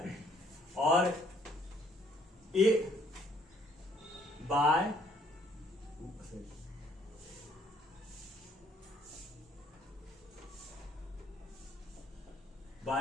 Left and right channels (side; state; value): both; normal; correlation 0.63